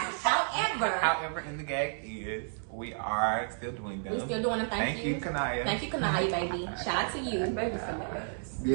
However, in the gag is we are still doing them. We're still doing them. Thank you, Kanaya. Thank you, Kanaya, baby. Shout out to you.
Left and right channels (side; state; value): left; silent; digital silence